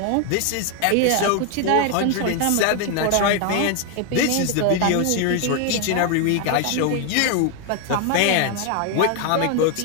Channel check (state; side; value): different; both; correlation 0.01